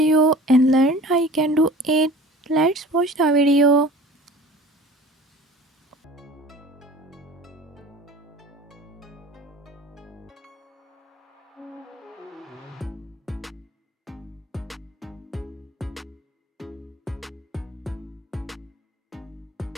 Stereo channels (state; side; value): normal; both; correlation 0.44